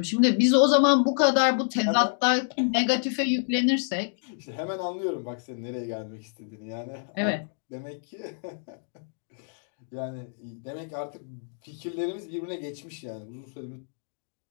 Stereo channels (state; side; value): silent; right; digital silence